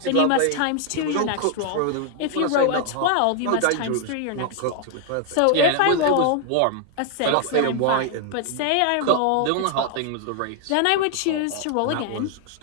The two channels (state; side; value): different; both; correlation 0.00